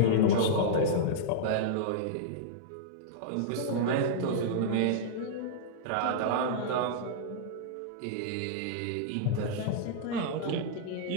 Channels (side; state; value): both; different; correlation -0.02